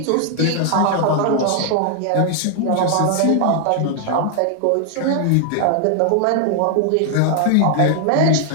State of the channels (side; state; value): both; different; correlation 0.00